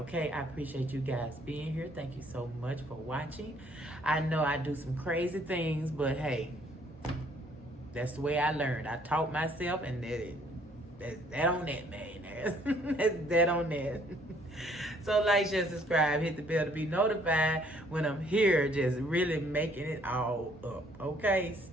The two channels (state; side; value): normal; both; correlation 0.63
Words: I appreciate you guys being here. Thank you so much for watching. I know I do some crazy things, but hey, that's the way I learned. I taught myself, and that's that on that, millionaires. That's that on that. So like, share, subscribe, hit the bell to be notified when I'm here, just really making it all up, okay?